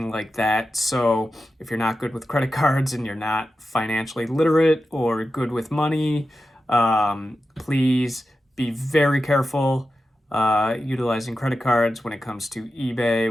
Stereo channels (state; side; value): normal; both; correlation 0.92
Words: like that. So if you're not good with credit cards and you're not financially literate or good with money, please be very careful utilizing credit cards when it comes to